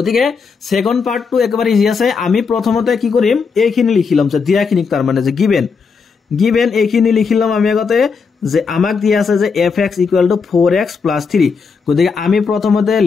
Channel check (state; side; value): quieter; right; 5.3 dB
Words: সেকেন্ড পাৰ্টটো একেবাৰে ইজি আছে আমি প্ৰথমতে কি কৰিম এইখিনি লিখিলাম যে দিয়াখিনি তাৰ মানে যে given এইখিনি লিখিলাম আমি আগতে যে আমাক দিয়া আছে যে fx = 4x + 3 গতিকে আমি প্ৰথমতে